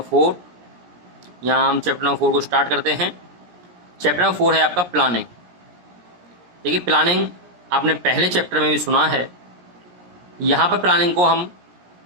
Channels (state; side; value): late; left; 17 ms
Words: 4। यहाँ हम चैप्टर नंबर 4 को स्टार्ट करते हैं। चैप्टर नंबर 4 है आपका प्लानिंग। देखिए, प्लानिंग आपने पहले चैप्टर में भी सुना है। यहाँ पर प्लानिंग को हम